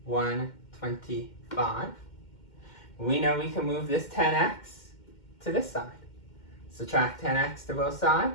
125. We know we can move this 10x to this side. Subtract 10x to both sides.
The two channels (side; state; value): right; late; 2.1 ms